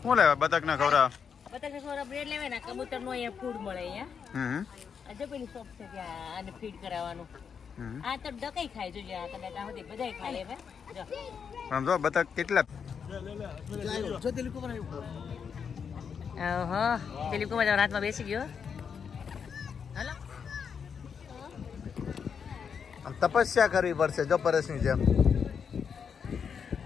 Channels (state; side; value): quieter; right; 6.7 dB